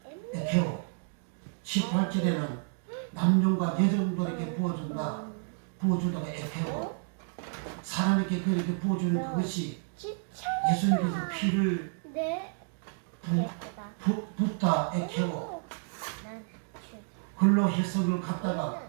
에케오. 18절에는 남종과 여종들에게 부어준다가 에케오. 사람에게 그렇게 부어주는 그것이 예수님께서 피를 네. 예쁘다. 붓다 애캐고 난 글로 해석을 갖다가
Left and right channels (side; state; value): left; silent; 57 dB below the other